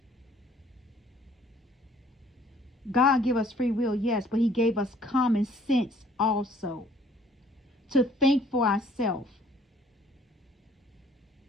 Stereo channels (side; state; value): both; normal; correlation 0.58